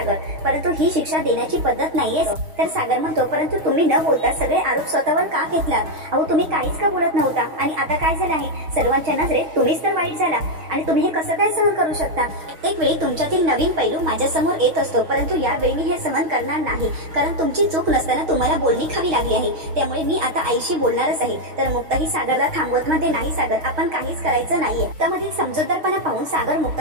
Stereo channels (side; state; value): left; late; 6.4 ms